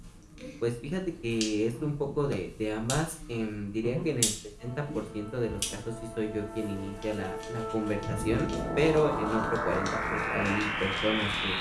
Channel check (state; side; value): identical; both; correlation 1.00